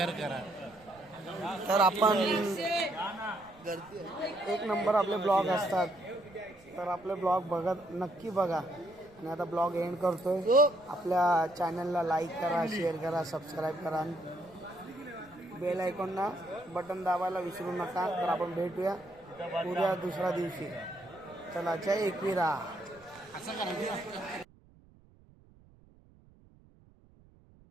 करा. तर आपण एक नंबर आपले ब्लॉग असतात. तर आपले ब्लॉग नक्की बघा. आणि आता ब्लॉग एंड करतोय. आपल्या चॅनलला लाईक करा, शेअर करा, सबस्क्राईब करा आणि बेल आयकॉनला बटन दाबायला विसरू नका. तर आपण भेटूया उद्या दुसऱ्या दिवशी. चला जय एकविरा. असं करा.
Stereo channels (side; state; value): right; noise; rumble, 27 dB below the sound